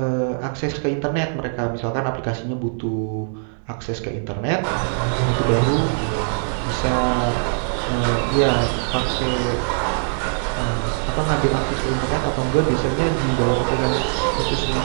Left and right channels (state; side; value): silent; left; digital silence